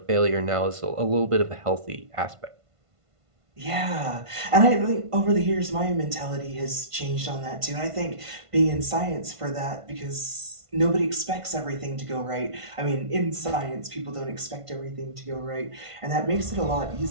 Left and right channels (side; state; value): left; late; 1.5 ms